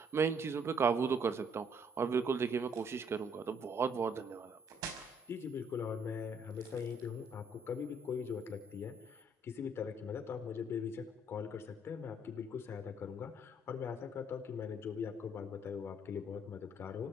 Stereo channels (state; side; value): normal; both; correlation 0.66